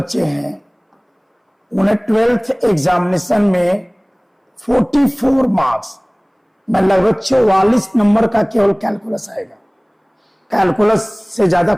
हैं उन्हें 12th एग्जामिनेशन में 44 मार्क्स में लगभग 44 नंबर का केवल कैलकुलस आएगा। कैलकुलस से ज्यादा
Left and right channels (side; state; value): both; identical; correlation 1.00